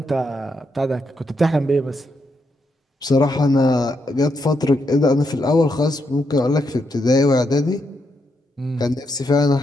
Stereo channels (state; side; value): normal; both; correlation 0.81